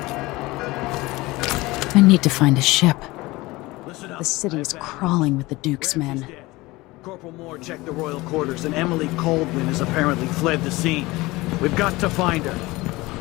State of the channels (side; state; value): right; quieter; 20.9 dB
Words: I need to find a ship. The city is crawling with the Duke's men. Corporal Moore checked the royal quarters, and Emily Coldwin has apparently fled the scene. We've got to find her.